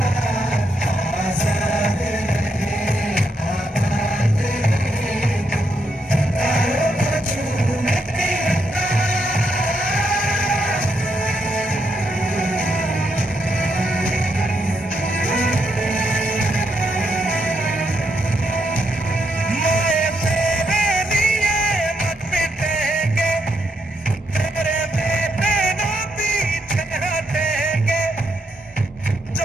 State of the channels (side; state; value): both; normal; correlation 0.79